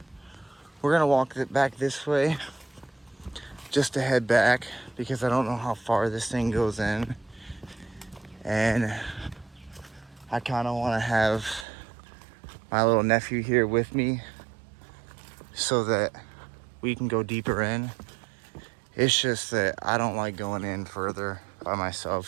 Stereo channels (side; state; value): left; drops out; at 11.7 s